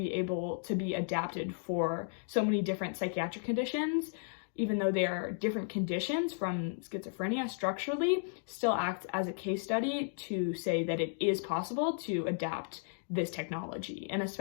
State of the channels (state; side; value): silent; right; digital silence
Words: able to be adapted for so many different psychiatric conditions, even though they are different conditions from schizophrenia structurally, still acts as a case study to say that it is possible to adapt this technology. And